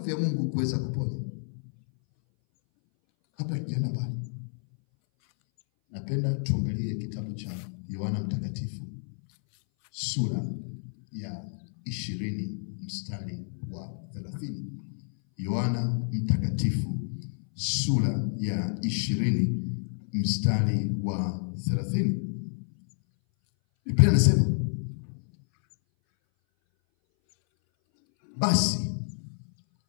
ya Mungu kuweza kuponya? Hapa kijana bali napenda tuangalie kitabu cha Yohana Mtakatifu sura ya 20 mstari wa 30. Yohana Mtakatifu sura ya 20 mstari wa 30. Biblia inasema, basi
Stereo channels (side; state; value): right; silent; 58 dB below the other